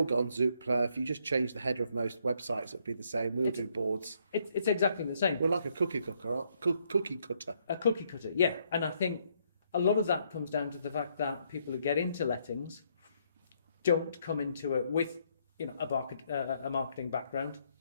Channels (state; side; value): inverted; both; correlation -0.72